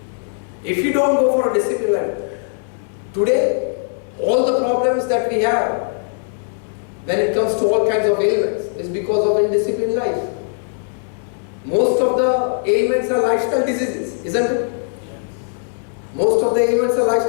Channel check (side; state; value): right; silent; digital silence